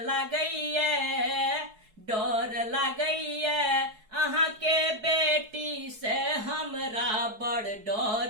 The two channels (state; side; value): late; left; 4.7 ms